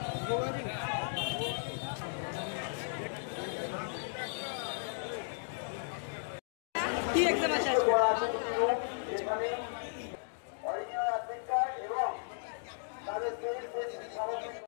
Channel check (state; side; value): silent; right; digital silence